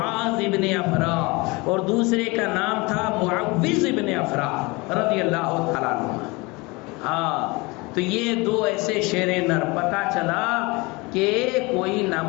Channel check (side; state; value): right; quieter; 25.3 dB